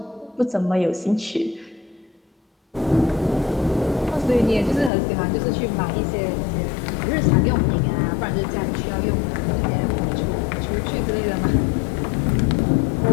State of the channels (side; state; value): right; drops out; at 4.9 s